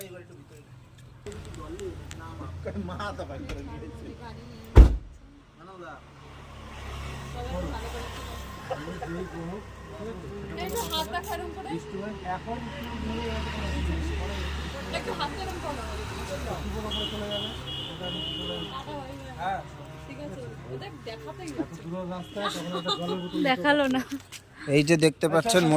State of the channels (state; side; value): identical; both; correlation 1.00